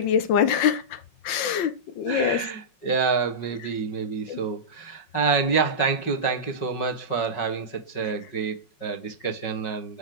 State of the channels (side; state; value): right; late; 5.7 ms